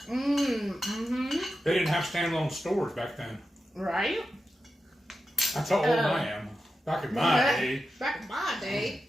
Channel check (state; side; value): normal; both; correlation 0.91